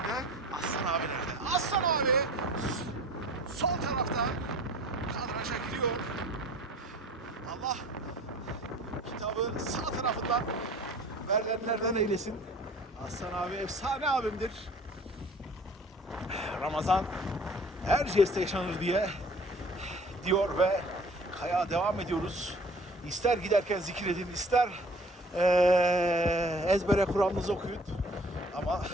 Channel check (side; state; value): both; normal; correlation 0.49